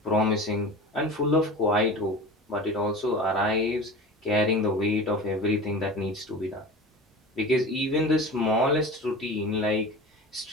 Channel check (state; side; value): normal; both; correlation 0.34